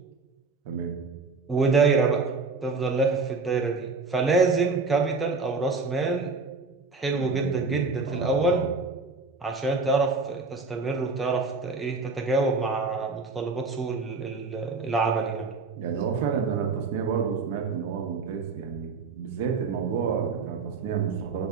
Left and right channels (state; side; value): quieter; left; 4.2 dB